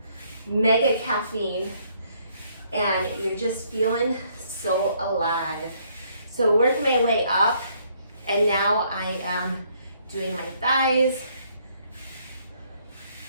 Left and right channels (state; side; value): inverted; both; correlation -0.67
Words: mega caffeine and you're just feeling so alive. So work my way up, and now I am doing my thighs,